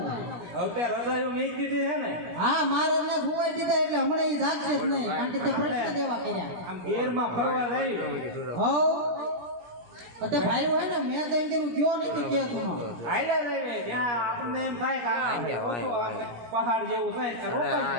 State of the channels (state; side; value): late; left; 17 ms